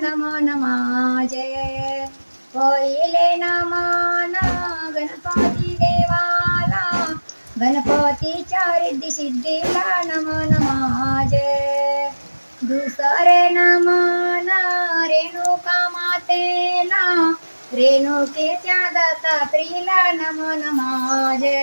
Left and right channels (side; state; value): both; inverted; correlation -1.00